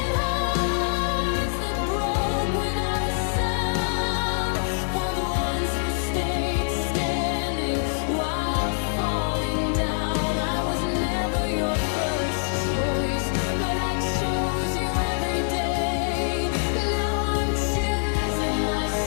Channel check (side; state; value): right; silent; digital silence